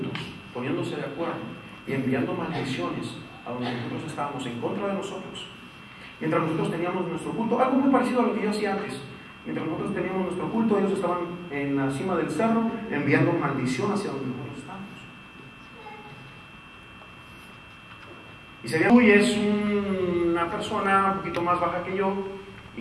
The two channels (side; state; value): both; identical; correlation 1.00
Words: poniéndose de acuerdo y enviando maldiciones a donde nosotros estábamos en contra de nosotros. Mientras nosotros teníamos nuestro culto, algo muy parecido a lo que yo hacía antes. Mientras nosotros teníamos nuestro culto, ellos estaban en la cima del cerro enviando maldición hacia donde nosotros estábamos. Y se ve, es una persona un poquito más baja que yo y